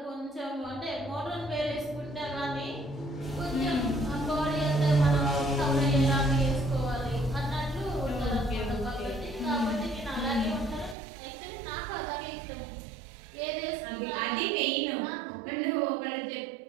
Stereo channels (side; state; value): left; drops out; at 11.0 s